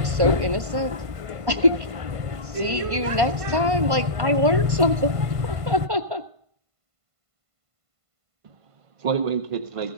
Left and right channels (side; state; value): left; late; 1.5 ms